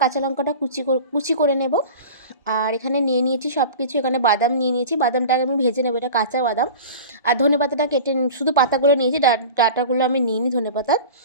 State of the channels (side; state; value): both; inverted; correlation -0.35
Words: কাঁচা লঙ্কাটা কুচি করে নেব। আর এখানে নিয়ে নিয়েছি সব কিছু। এখানে বাদাম নিয়ে নিয়েছি, বাদামটাকে আমি ভেজে নেবো, এটা কাঁচা বাদাম। আর ধনেপাতাটা কেটে শুধু পাতাগুলো নিয়েছি, ডাটাগুলো আমি নিইনি ধনেপাতার।